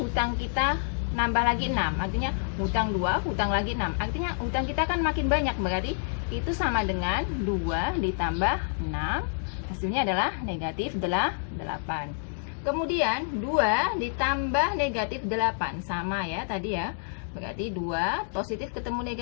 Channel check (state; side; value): silent; right; digital silence